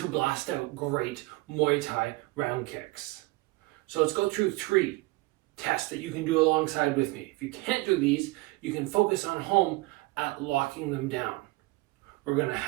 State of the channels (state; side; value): quieter; left; 21.8 dB